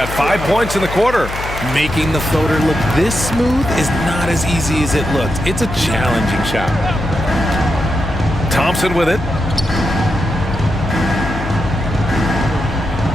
5 points in the quarter. Making the floater look this smooth is not as easy as it looks. It's a challenging shot. Thompson with it.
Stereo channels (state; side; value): noise; left; hum, 8 dB below the sound